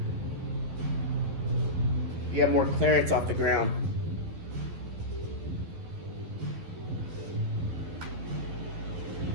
You have more clearance off the ground.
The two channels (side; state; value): left; late; 12 ms